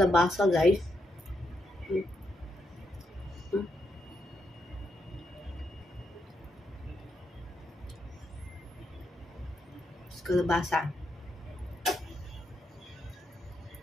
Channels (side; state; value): both; normal; correlation 0.81